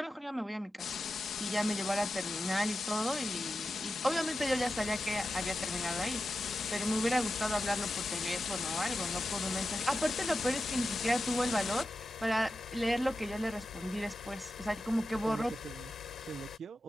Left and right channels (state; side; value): normal; both; correlation 0.92